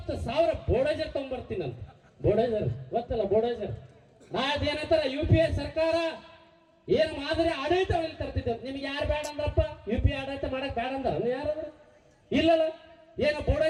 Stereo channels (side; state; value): both; identical; correlation 1.00